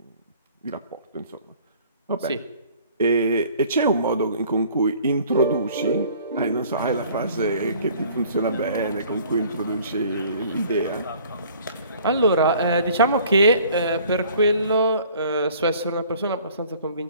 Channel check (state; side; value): inverted; both; correlation -0.53